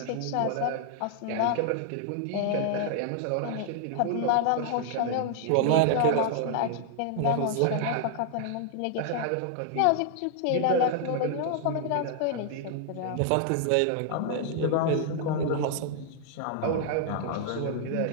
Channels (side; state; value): both; different; correlation 0.00